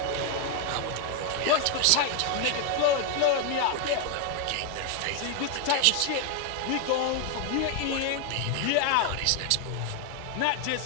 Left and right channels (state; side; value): different; both; correlation 0.01